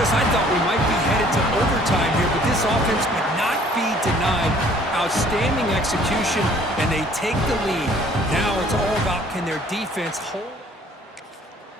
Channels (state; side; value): normal; both; correlation 0.57